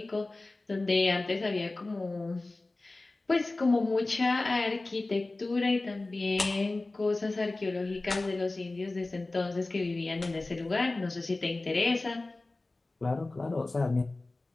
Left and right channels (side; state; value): right; quieter; 3.1 dB